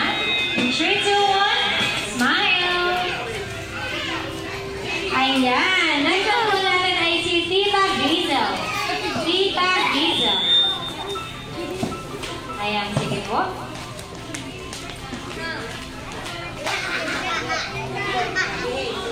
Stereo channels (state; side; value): identical; both; correlation 1.00